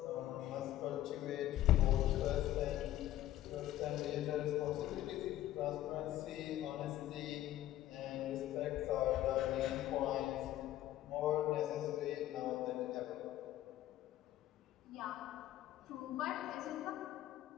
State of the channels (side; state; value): right; quieter; 13.6 dB